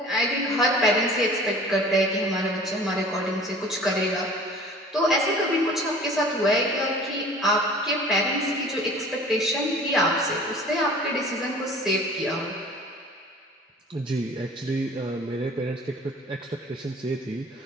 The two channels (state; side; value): normal; both; correlation 0.46